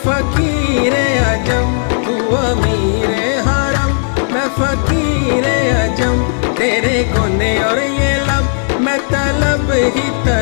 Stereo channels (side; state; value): right; silent; 60 dB below the other